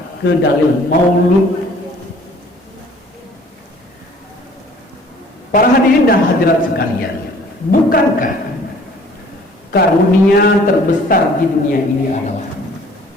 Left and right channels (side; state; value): both; normal; correlation 0.54